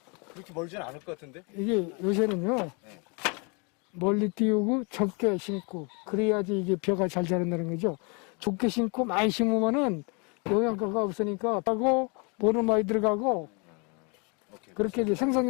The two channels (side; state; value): right; quieter; 32.9 dB